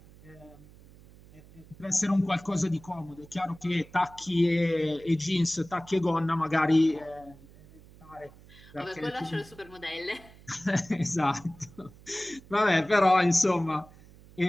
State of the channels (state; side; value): noise; right; hum, 23 dB below the sound